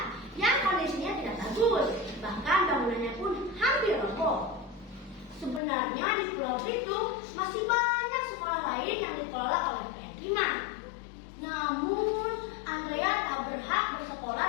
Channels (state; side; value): drops out; right; at 5.6 s